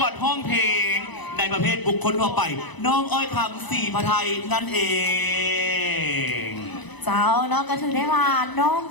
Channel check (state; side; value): late; right; 1.0 ms